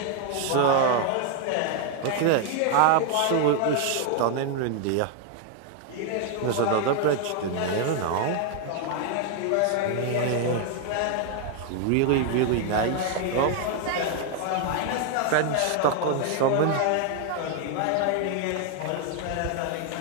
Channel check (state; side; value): different; both; correlation 0.00